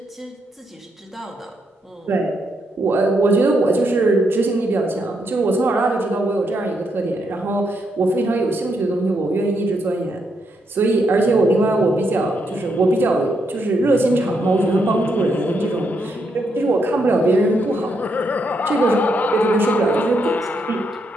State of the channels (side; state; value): both; normal; correlation 0.79